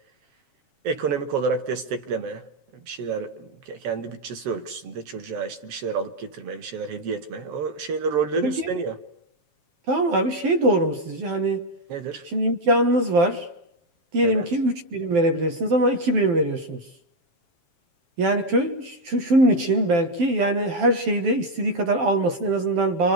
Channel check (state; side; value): late; left; 7.4 ms